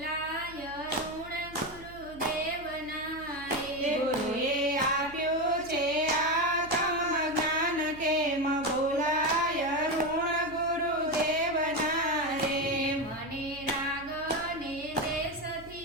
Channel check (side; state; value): right; noise; hum, 19 dB below the sound